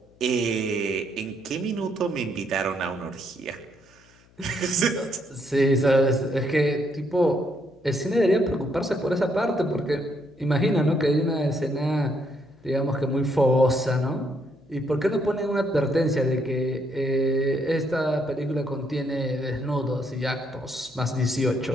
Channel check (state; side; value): noise; left; hum, 29 dB below the sound